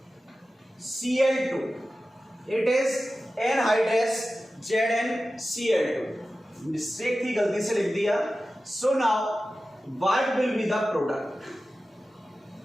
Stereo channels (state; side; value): normal; both; correlation 0.94